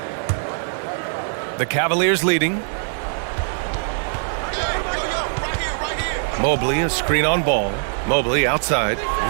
The Cavaliers leading. Mobley, a screen on ball. Mobley outside.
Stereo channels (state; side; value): silent; left; 64 dB below the other